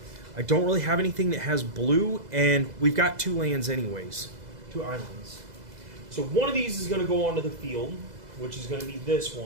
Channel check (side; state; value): left; late; 2.0 ms